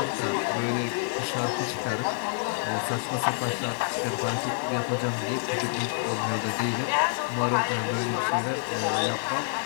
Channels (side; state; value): right; silent; digital silence